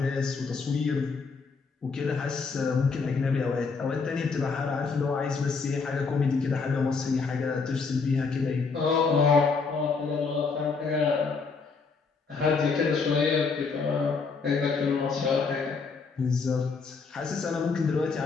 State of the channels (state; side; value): quieter; right; 4.8 dB